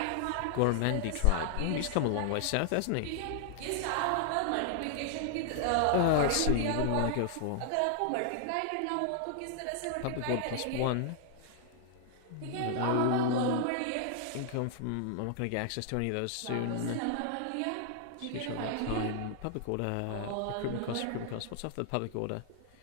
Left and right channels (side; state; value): both; different; correlation 0.00